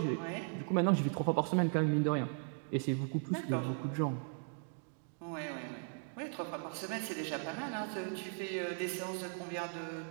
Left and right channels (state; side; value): silent; left; 53 dB below the other